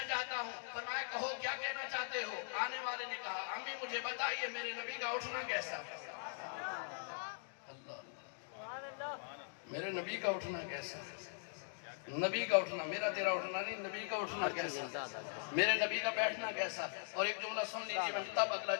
चाहता हूँ। फरमाया कहो क्या कहना चाहते हो? आने वाले ने कहा अम्मी मुझे बताइए मेरे नबी का उठना कैसा? अल्लाह, मेरे नबी का उठना कैसा? नबी का उठना, मेरा तेरा उठना नहीं, नबी का उठना कैसा, मेरे नबी का बैठना कैसा। और एक जुमला सुन लीजिए, मैं तब अगला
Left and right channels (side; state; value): right; silent; digital silence